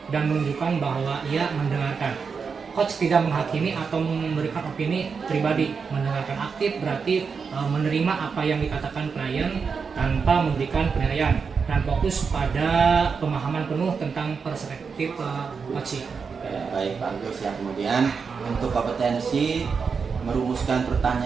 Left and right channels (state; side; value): quieter; left; 5.6 dB